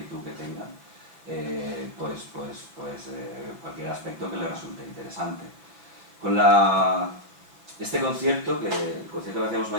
que tengan, cualquier aspecto que les resulte interesante. Con este concierto, el concierto que hacemos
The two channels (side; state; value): left; late; 6.3 ms